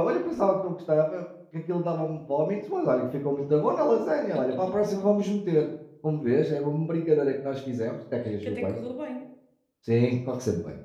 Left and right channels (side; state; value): both; identical; correlation 1.00